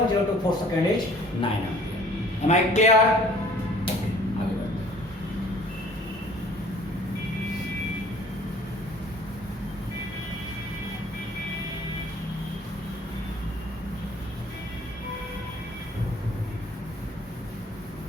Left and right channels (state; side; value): normal; both; correlation 0.53